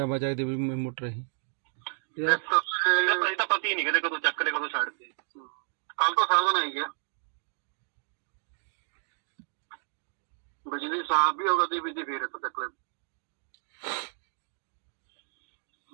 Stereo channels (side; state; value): left; silent; digital silence